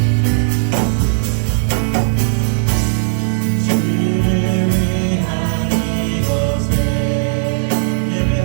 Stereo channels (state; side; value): silent; left; digital silence